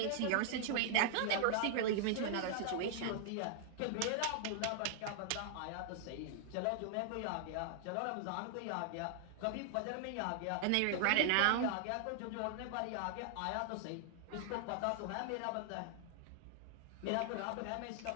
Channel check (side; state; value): both; different; correlation -0.01